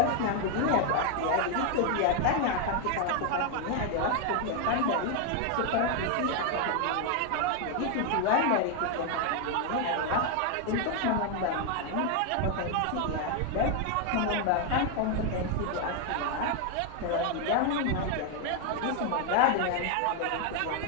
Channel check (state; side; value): different; both; correlation 0.01